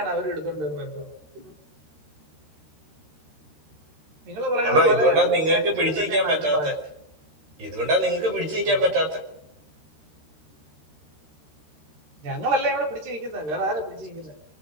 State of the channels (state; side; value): late; left; 13 ms